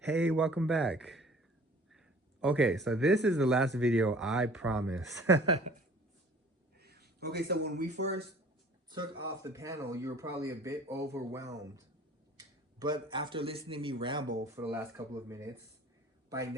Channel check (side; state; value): both; normal; correlation 0.50